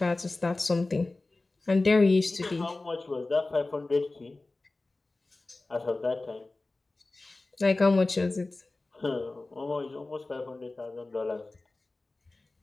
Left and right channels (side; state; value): right; quieter; 3.1 dB